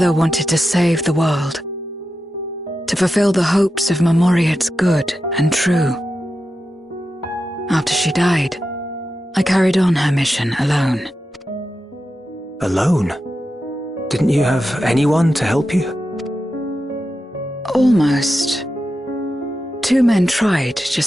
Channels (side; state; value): both; normal; correlation 0.90